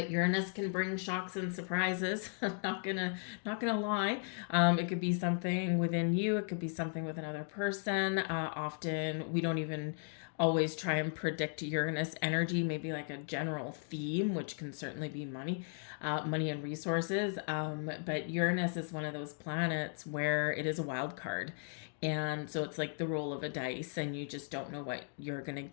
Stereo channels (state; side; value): silent; right; 54 dB below the other